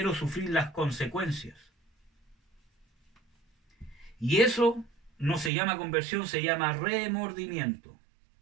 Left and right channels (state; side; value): drops out; left; at 5.5 s